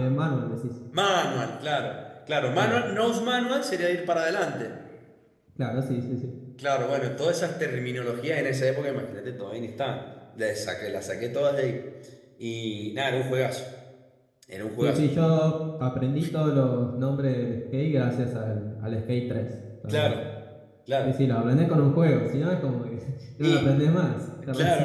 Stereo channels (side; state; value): both; identical; correlation 1.00